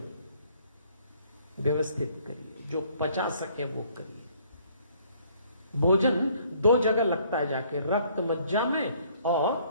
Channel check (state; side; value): inverted; both; correlation -0.62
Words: व्यवस्थित करिए, जो पचा सके वो करिए। भोजन 2 जगह लगता है जाके, रक्त मज्जा में और